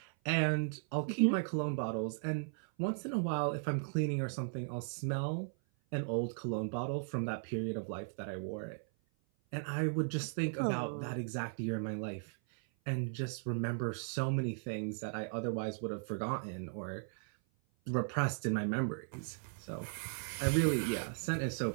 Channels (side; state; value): left; silent; 53 dB below the other